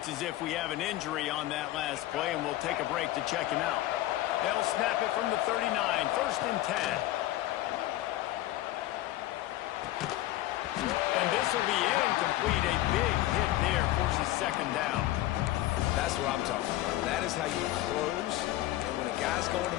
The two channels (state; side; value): quieter; right; 15.6 dB